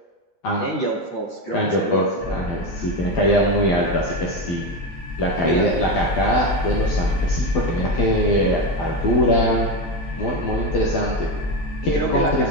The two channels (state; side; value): late; right; 12 ms